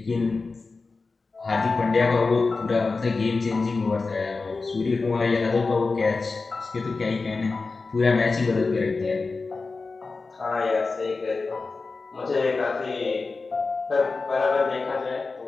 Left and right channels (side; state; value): right; quieter; 4.0 dB